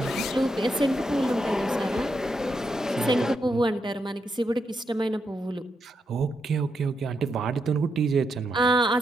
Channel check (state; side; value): normal; both; correlation 0.82